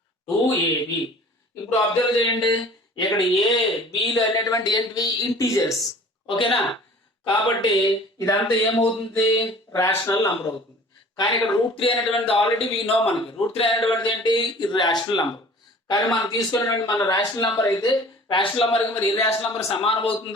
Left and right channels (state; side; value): normal; both; correlation 0.47